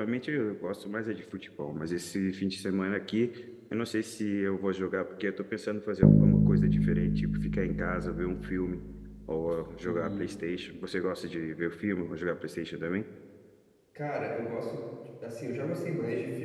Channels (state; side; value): identical; both; correlation 1.00